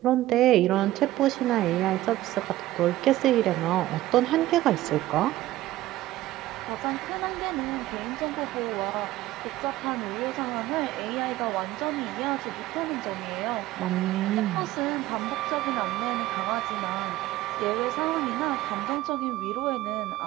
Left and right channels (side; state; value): left; quieter; 15.8 dB